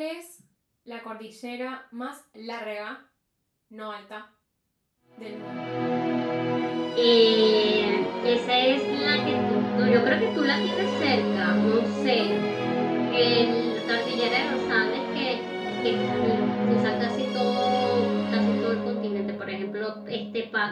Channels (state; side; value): identical; both; correlation 1.00